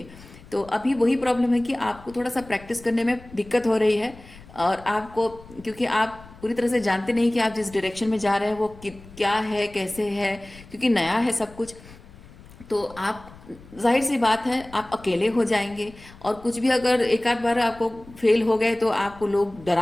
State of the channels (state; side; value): noise; left; rumble, 20 dB below the sound